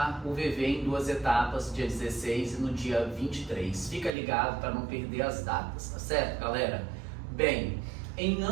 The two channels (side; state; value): left; drops out; at 4.1 s